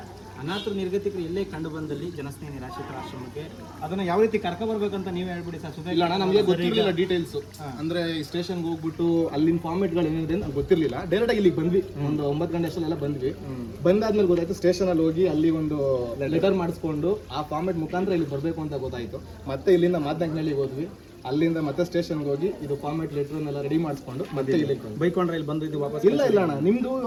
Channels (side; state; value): both; identical; correlation 1.00